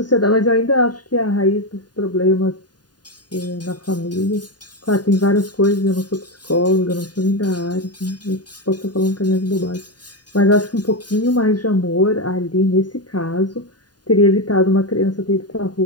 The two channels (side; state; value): right; late; 0.70 ms